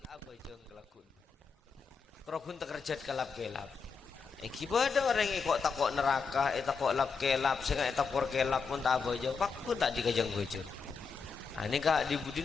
apa jeng kelakun kerokun tekerjat kelap-kelap iki beda orang kok takok neraka takok lap-kelap sehingga takok kelap pun tak apa jauh pak pun tak dikajang bojor ini kak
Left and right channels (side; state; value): right; quieter; 5.3 dB